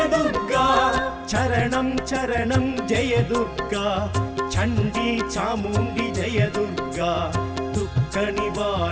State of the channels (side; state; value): both; identical; correlation 1.00